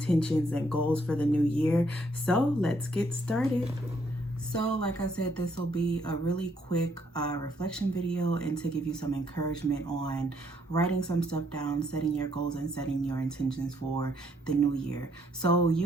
and goals for the new year. So let's get started. So like I said, this will be a really quick reflection video and to give you some encouragement on writing some stuff down, setting your goals and setting your intentions for the new year. So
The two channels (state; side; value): normal; both; correlation 0.70